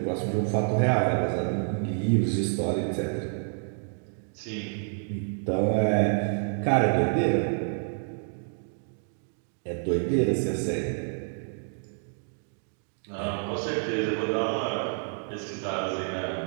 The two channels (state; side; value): silent; left; 59 dB below the other